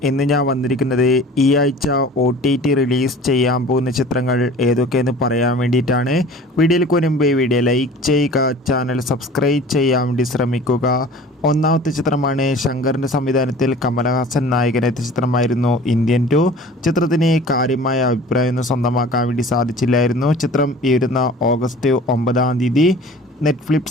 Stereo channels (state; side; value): normal; both; correlation 0.44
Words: ഇന്ന് ഞാൻ വന്നിരിക്കുന്നത് ഈ ആഴ്ച OTT റിലീസ് ചെയ്യാൻ പോകുന്ന ചിത്രങ്ങൾ ഏതൊക്കെയെന്ന് പറയാൻ വേണ്ടിയിട്ടാണ്. വീഡിയോയിലേക്ക് വരുമ്പോൾ ഈ വീഡിയോ ലൈക്ക് ചെയ്യുക, ചാനൽ സബ്സ്ക്രൈബ് ചെയ്യാൻ വേണ്ടി ശ്രമിക്കുക. ഒന്നാമത്തെ ചിത്രമാണ് ശങ്കറിൻ്റെ സംവിധാനത്തിൽ കമലഹാസൻ നായകനെത്തിയ ചിത്രമായിരുന്നു ഇന്ത്യൻ 2. ചിത്രത്തിന് കാര്യമായ അഭിപ്രായമൊന്നും സ്വന്തമാക്കാൻ വേണ്ടി സാധിച്ചില്ലായിരുന്നു. ചിത്രം ഈ വരുന്ന ഓഗസ്റ്റ് 9